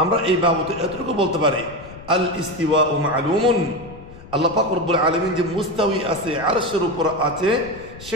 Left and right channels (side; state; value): left; noise; rumble, 17 dB below the sound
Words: আমরা এই বাবদে এতটুকু বলতে পারি, আল ইস্তিওয়াউ মা'লুমুন, আল্লাহ পাক রব্বুল আলামিন যে মুস্তাওয়ী আছে, আরশের উপর আছে,